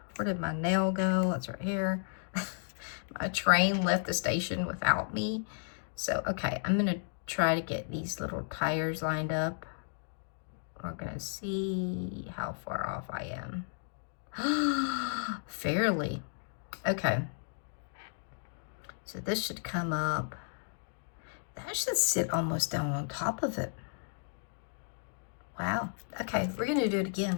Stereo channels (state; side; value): silent; right; digital silence